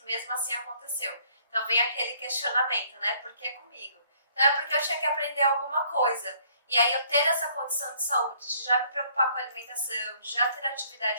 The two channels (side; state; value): both; inverted; correlation -0.63